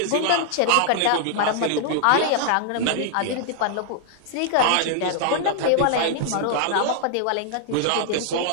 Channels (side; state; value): both; different; correlation -0.01